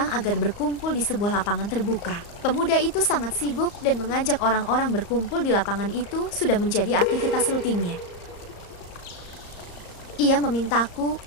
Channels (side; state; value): right; late; 34 ms